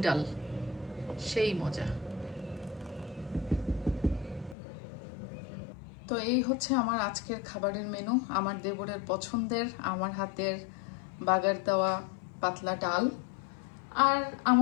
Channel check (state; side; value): drops out; right; at 4.5 s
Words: ডাল, সেই মজা। তো এই হচ্ছে আমার আজকের খাবারের মেনু, আমার দেবরের পছন্দের, আমার হাতের বাগার দেওয়া পাতলা ডাল, আর